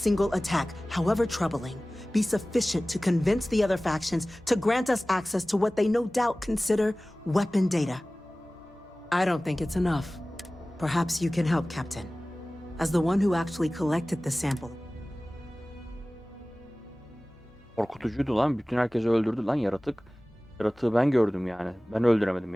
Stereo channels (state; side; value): normal; both; correlation 0.98